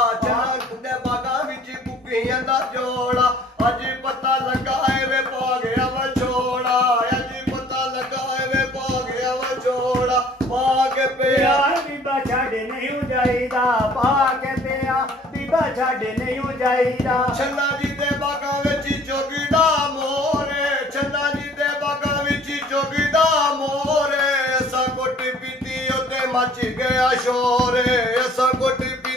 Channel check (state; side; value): normal; both; correlation 0.54